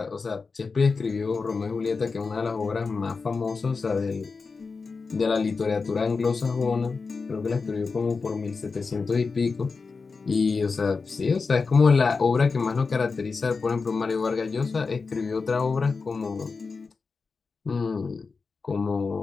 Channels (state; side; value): quieter; right; 4.6 dB